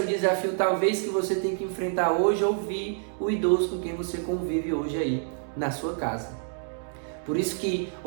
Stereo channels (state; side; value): silent; left; 60 dB below the other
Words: o desafio talvez que você tem que enfrentar hoje, ouvir o idoso com quem você convive hoje aí na sua casa. Por isso que